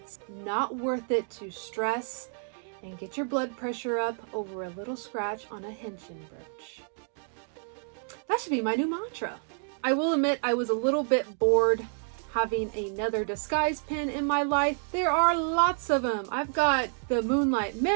not worth it to stress and get your blood pressure up over a little scratch on a henshin brooch. That should be my new mantra. I will admit I was a little bit bored having another disguise pin in my life. There are lots of them. I've got the Moonlight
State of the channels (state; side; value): silent; left; 58 dB below the other